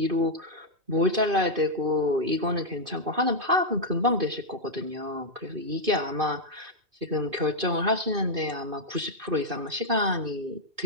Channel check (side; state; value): left; late; 2.5 ms